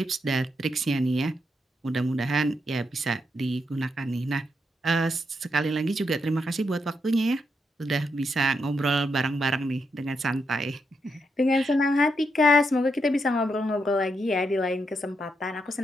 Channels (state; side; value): normal; both; correlation 0.81